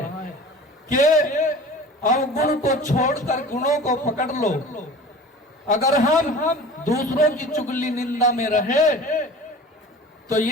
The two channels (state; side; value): normal; both; correlation 0.40